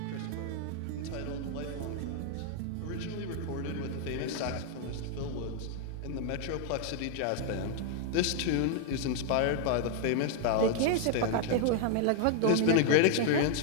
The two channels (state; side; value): different; both; correlation 0.00